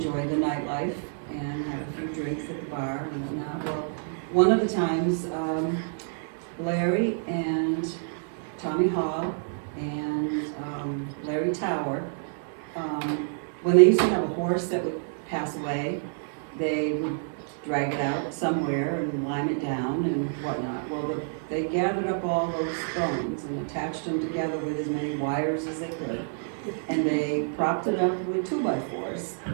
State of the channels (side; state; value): left; silent; 59 dB below the other